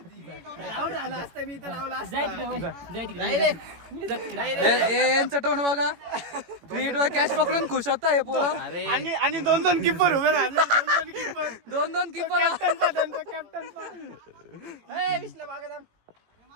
आउट झाला असता मी तर लावला असता. यांचं तोंड बघा. फ्रीट वर कॅच पकडून खुश होता हे पोरं. आणि 2 किपर उभे राहिले. 2 keeper. 2 keeper. Captain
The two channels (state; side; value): late; left; 18 ms